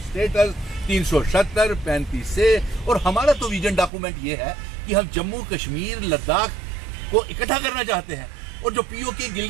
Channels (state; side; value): drops out; left; at 3.9 s